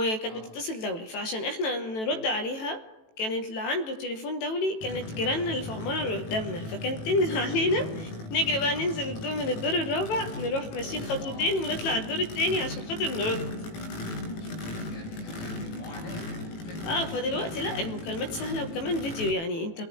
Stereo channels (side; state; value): right; late; 18 ms